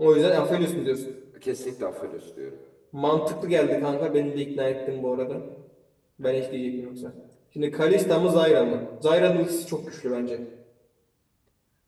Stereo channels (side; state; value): both; identical; correlation 1.00